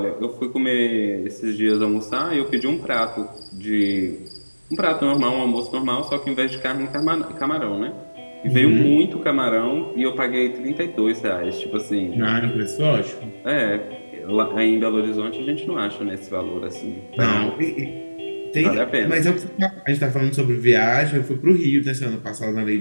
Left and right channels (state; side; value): inverted; both; correlation -1.00